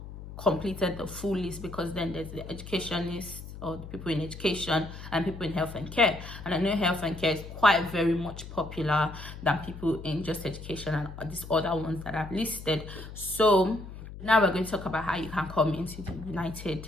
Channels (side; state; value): left; noise; hum, 12 dB below the sound